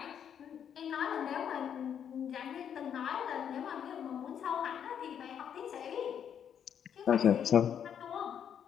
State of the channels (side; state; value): right; quieter; 8.6 dB